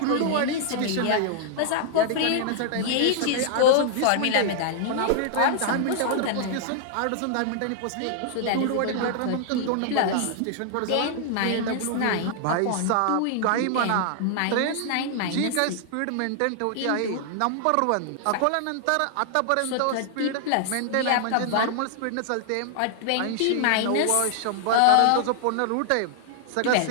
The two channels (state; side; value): different; both; correlation -0.01